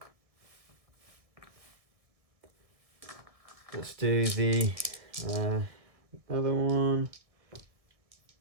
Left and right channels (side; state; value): left; late; 1.6 ms